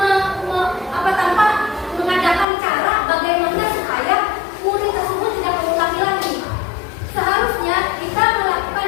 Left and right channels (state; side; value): drops out; right; at 2.5 s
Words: tanpa mengadakan cara bagaimana supaya murid tersebut tidak mengulangi lagi. Seharusnya kita melakukan